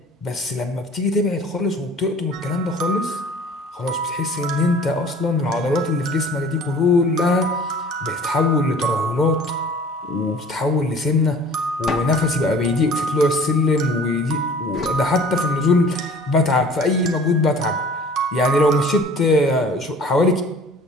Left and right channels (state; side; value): normal; both; correlation 0.48